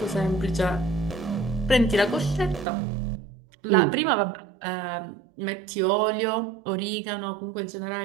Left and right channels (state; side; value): drops out; left; at 2.7 s